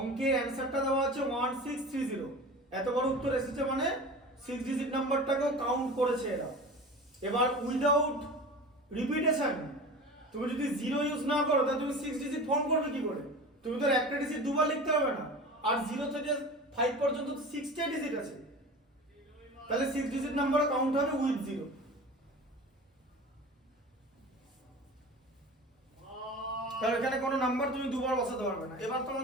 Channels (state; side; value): normal; both; correlation 0.35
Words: অ্যানসারটা দেওয়া আছে 1630, এত বড় উত্তর এসেছে মানে 6 ডিজিট নাম্বারটাকেও কাউন্ট করেছে এরা। এবার উইদাউট রিপিটেশন, তুমি যদি 0 ইউজ না করো, তাহলে তুমি 6 ডিজিট ফর্ম করবে কি করে? তুমি তো একটা ডিজিট দুবার লিখতে হবে না, আর 0 থেকে 5 পর্যন্ত তো 6টা ডিজিট আছে, তাহলে 6 ডিজিট নাম্বার কাউন্ট হবে উইথ 0। তাহলে এখানে কোনো নাম্বার তুমি দুবার বসাতে পারবে না। এবার